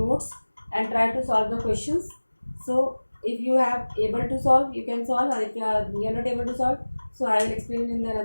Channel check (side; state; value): both; inverted; correlation -1.00